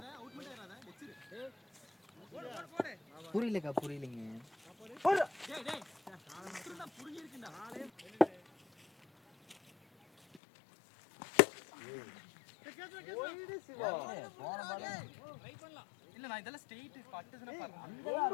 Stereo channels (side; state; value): right; drops out; at 10.4 s